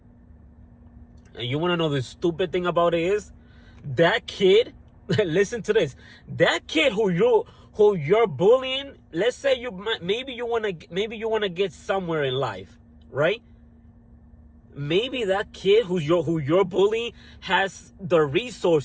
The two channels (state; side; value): identical; both; correlation 1.00